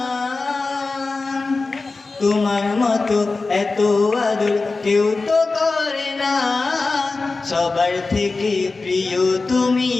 তোমার মতো এত আদর কেউ তো করে না। সবার থেকে প্রিয় তুমি,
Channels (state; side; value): quieter; right; 3.8 dB